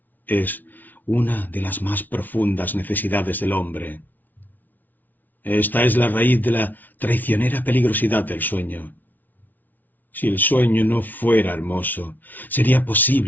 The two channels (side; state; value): right; late; 0.083 ms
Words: es una de las más profundas necesidades del hombre. Esta es la raíz de la traicionera peligrosidad del sueño. Si el sueño no fuera hermoso, sería